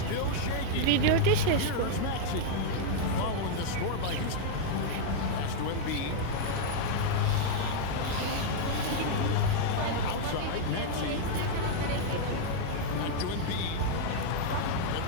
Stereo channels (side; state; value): both; different; correlation 0.00